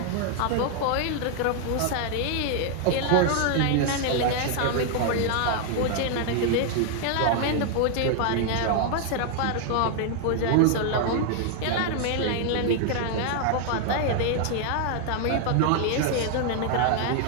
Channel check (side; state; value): both; different; correlation 0.00